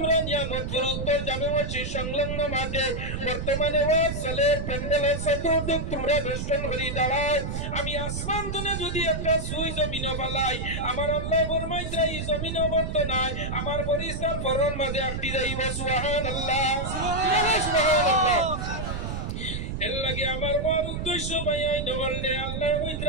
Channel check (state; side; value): noise; right; rumble, 4 dB below the sound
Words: নিয়ামত পুর উত্তর জামে মসজিদ সংলগ্ন মাঠে বর্তমানে ওয়াজ সালের প্যান্ডেলের চতুর্দিক তোমরা বেষ্টন করি দাঁড়াও আমি আসমান তুনে যদি একটা সুই জমিনে ফেলাই আমার আল্লাহ ফরমাইছে এই জমিনে বর্ত নাই আমার ফরিস্তার ফরন মাঝে একটি যাইব সুবহানাল্লাহ সুবহানাল্লাহ এর লাগে আমার বড় উদ্দেশ্য ভাইয়াই নবললে আল্লাহ